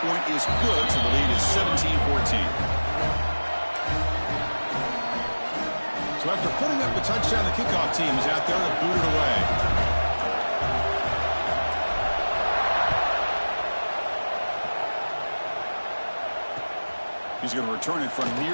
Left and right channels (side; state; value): both; inverted; correlation -1.00